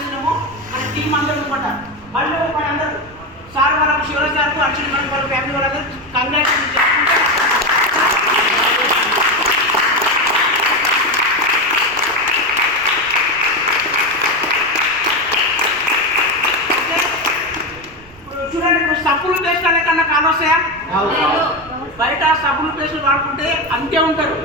మన టీం అందరూ అనమాట. మళ్ళీ అందరూ సార్ వాళ్ళకు శివరాజ్ సార్కు అర్చన మేడం వాళ్ళ ఫ్యామిలీ వాళ్ళందరూ కంగ్రాచులేషన్ చేసుకుంటే చూడండి. ఇప్పుడు సబ్బులు పేస్ట్ అనే కన్నా కాలు వస్తాయా? బయట సబ్బులు పేస్టులు వాడుకుంటే అంతే ఉంటారు.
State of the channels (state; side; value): noise; right; rumble, 23 dB below the sound